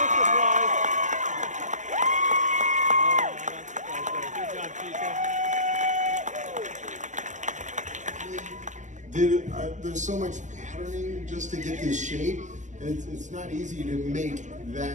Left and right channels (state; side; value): late; left; 0.35 ms